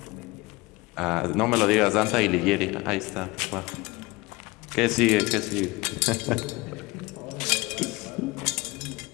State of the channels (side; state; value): right; quieter; 22.9 dB